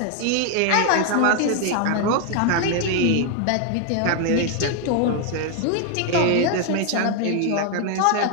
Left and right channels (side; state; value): both; different; correlation 0.00